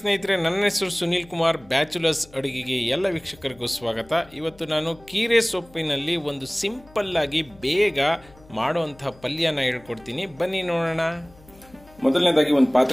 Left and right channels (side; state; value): left; noise; hum, 25 dB below the sound